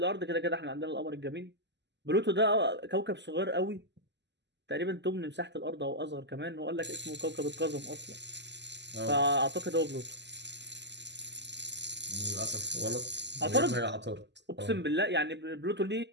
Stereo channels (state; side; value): late; left; 0.51 ms